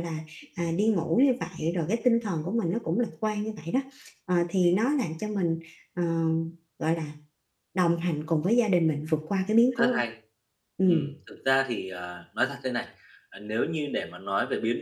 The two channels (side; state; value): both; identical; correlation 1.00